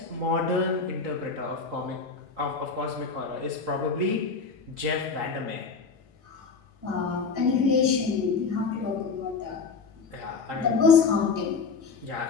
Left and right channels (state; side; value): quieter; right; 4.9 dB